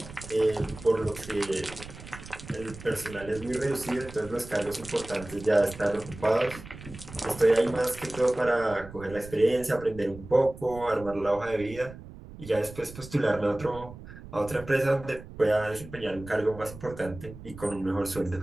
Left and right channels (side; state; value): right; noise; rumble, 15 dB below the sound